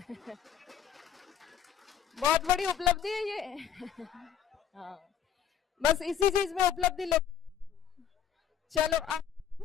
बहुत बड़ी उपलब्धि है ये। हाँ, बस इसी चीज में उपलब्धि ले। चलो, अब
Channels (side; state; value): right; quieter; 9.0 dB